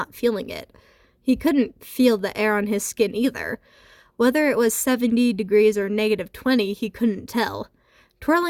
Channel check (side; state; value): both; identical; correlation 1.00